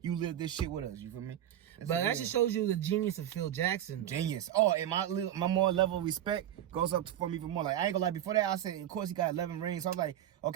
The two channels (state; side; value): quieter; left; 11.5 dB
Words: you live this shit with us. You feel me? But that just shows you the genius of Phil Jackson. Genius. Oh, and my more level of respect goes up for me even more. Like, I ain't gonna lie, before that, I said, of course, he got 11 rings. So I was like,